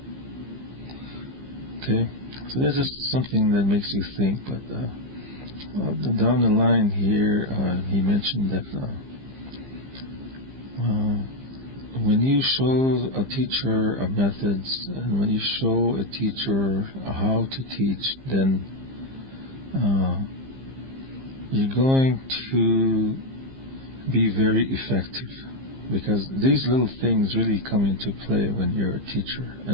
Okay, so that's just something that makes you think. But down the line here, he mentioned that when you show a teacher a methods, and when you show a teacher how to teach, then you're going to be very effective, because these little things really come into play when you're a teacher.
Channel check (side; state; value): left; late; 15 ms